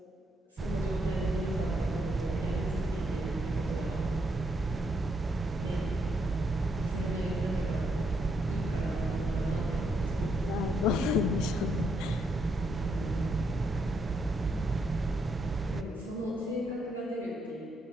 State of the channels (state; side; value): normal; both; correlation 0.77